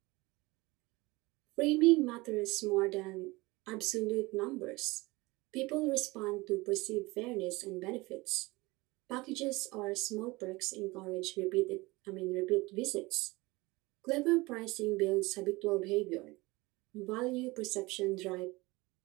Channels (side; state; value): left; quieter; 22.4 dB